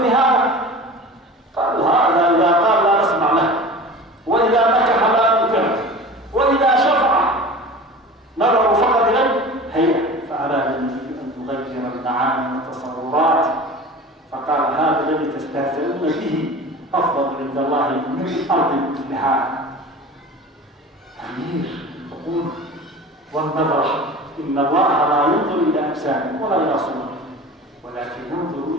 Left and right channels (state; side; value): normal; both; correlation 0.37